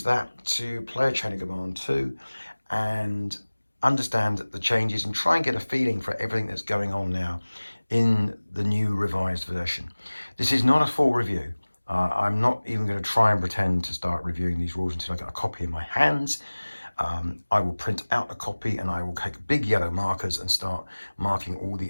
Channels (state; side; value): inverted; both; correlation -1.00